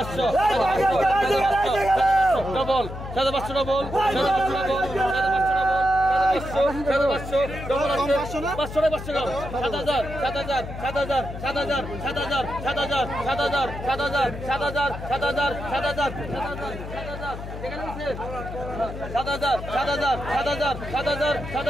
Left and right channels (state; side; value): noise; left; hum, 9 dB below the sound